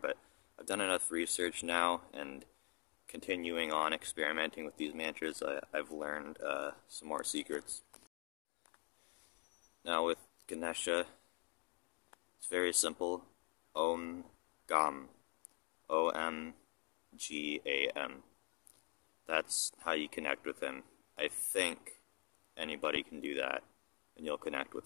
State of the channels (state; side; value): quieter; right; 32.9 dB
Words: I've done enough research now, and continuing on experimenting with these mantras, I've learned some more secrets. Now with Ganesha, it's very simple. Om Gam. O-M-G-A-M. That's how you connect with him. I think anybody can do that, and you'll connect